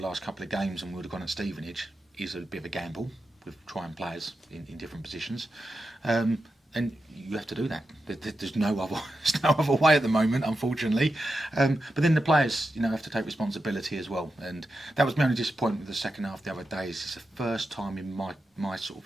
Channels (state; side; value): normal; both; correlation 0.89